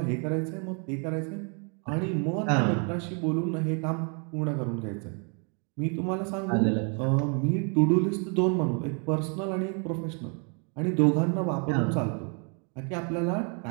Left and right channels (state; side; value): quieter; left; 37.6 dB